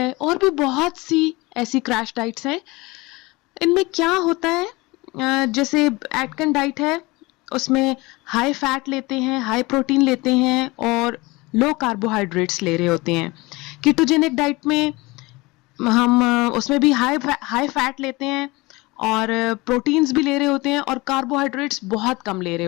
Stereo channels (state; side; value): quieter; right; 22.8 dB